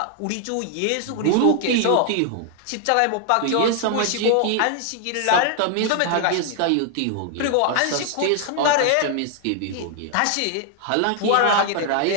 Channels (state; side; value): different; both; correlation 0.00